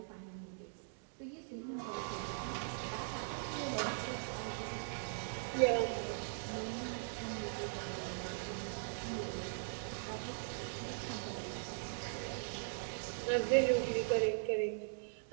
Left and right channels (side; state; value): left; silent; digital silence